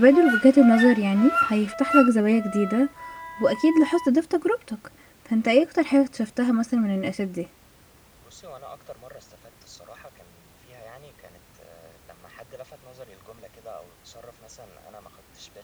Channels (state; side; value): identical; both; correlation 1.00